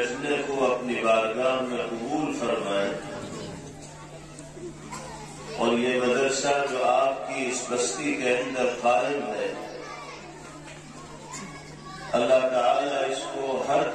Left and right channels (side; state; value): both; identical; correlation 1.00